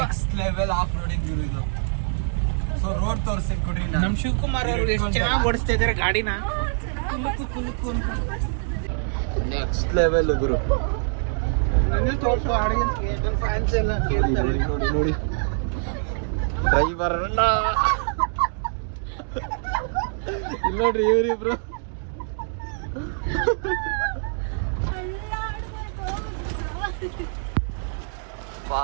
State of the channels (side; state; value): left; silent; digital silence